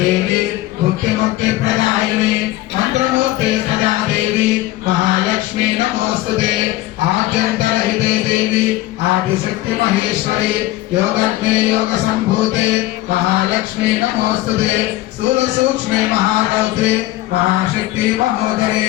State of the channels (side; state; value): right; quieter; 16.5 dB